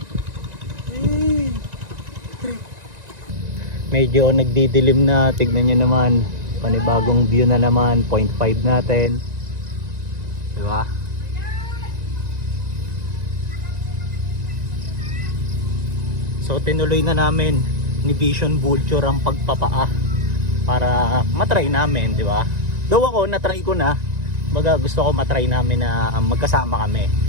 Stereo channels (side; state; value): left; late; 1.9 ms